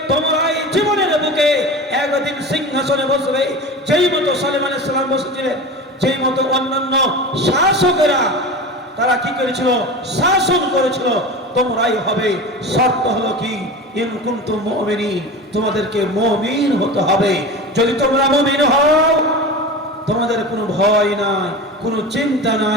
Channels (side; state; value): both; normal; correlation 0.30